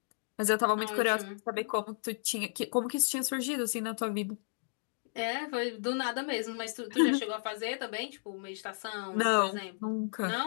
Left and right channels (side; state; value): right; silent; digital silence